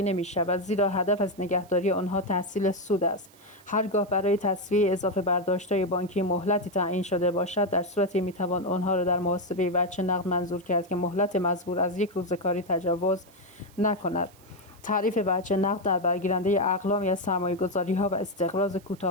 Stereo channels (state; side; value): noise; right; hiss, 27 dB below the sound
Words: نمی‌شود، زیرا هدف از نگهداری آنها تحصیل سود است. هرگاه برای تسویه اضافه برداشت‌های بانکی مهلتی تعیین شده باشد، در صورتی می‌توان آنها را در محاسبه وجه نقد منظور کرد که مهلت مزبور از 1 روز کاری تجاوز نکند. تعریف وجه نقد در برگیرنده اقلامی از سرمایه‌گذاری‌ها و استقراض